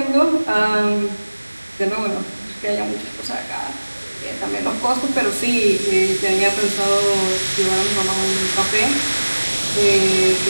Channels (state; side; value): inverted; both; correlation -1.00